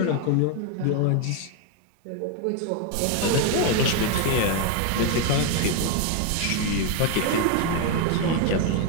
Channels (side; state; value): both; different; correlation 0.01